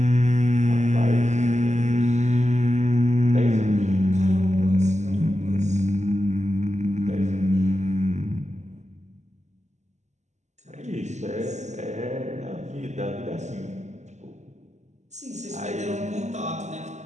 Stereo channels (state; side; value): late; left; 0.34 ms